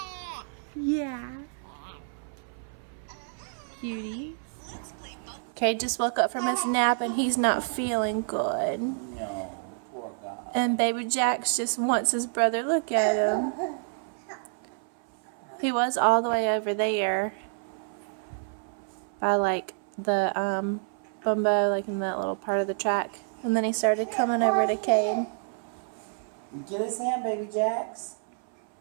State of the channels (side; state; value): left; silent; 58 dB below the other